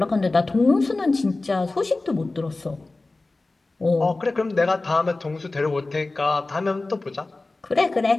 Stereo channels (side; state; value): right; quieter; 3.2 dB